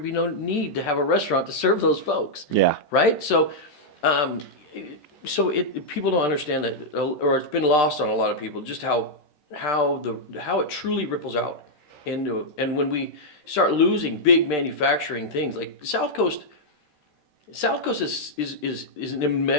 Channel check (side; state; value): right; late; 13 ms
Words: be no need to have a restaurant to serve those folks. Yeah. Right? So, people don't understand that, or it's been lost on a lot of people, just how it truly ripples out into, and when we start losing big manufacturing things like South Coast is an